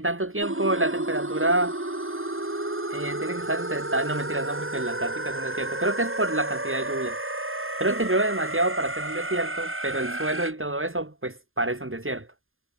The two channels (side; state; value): left; late; 0.60 ms